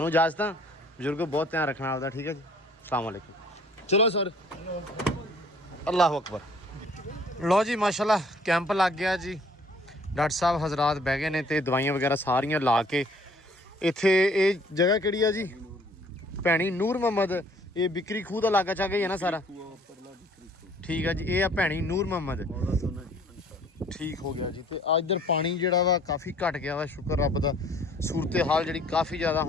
ਇਜਾਜ਼ਤ ਆ, ਬਜ਼ੁਰਗੋ ਬਹੁਤ ਧਿਆਨ ਰੱਖਣਾ ਆਪਦਾ, ਠੀਕ ਹੈ ਜੀ। ਅਸਲਾਮ ਵਾਲੇਕੁਮ। ਚਲੋ ਸਰ, ਅੱਲਾਹੁ ਅਕਬਰ। ਲਓ ਜੀ ਮਾਸ਼ਾਅੱਲਾ ਕੈਂਪ ਲੱਗ ਗਿਆ ਜੀ। ਡਾਕਟਰ ਸਾਹਿਬ ਹਜ਼ਰਾਤ ਬਹਿ ਗਏ ਨੇ ਤੇ ਦਵਾਈਆਂ ਵਗੈਰਾ ਸਾਰੀਆਂ ਲਾ ਕੇ। ਇੱਥੇ ਇਹ ਜਗ੍ਹਾ ਕਿਹੜੀ ਆ ਜੀ? ਭੈਣੀ ਨੂਰ ਮੁਹੰਮਦ। ਇਹ ਬਿਕਰੀ ਖੂਹ ਦਾ ਇਲਾਕਾ ਚਾ ਗਈ ਹੈ ਨਾ ਸਾਰਾ? ਠੀਕ ਆ ਜੀ, ਇਹ ਆ ਭੈਣੀ ਨੂਰ ਮੁਹੰਮਦ। ਠੀਕ ਹੋ ਗਿਆ ਜੀ। ਤੇ ਆ ਇੱਧਰ ਪਾਣੀ ਜਿਹੜਾ ਵਾ ਕਾਫੀ ਘਟ ਗਿਆ ਵਾ, ਸ਼ੁਕਰ ਰੱਬ ਦਾ। ਸੂਰਤ ਹਾਲ ਜਿਹੜੀ ਕਾਫੀ ਜ਼ਿਆਦਾ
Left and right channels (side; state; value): both; normal; correlation 0.57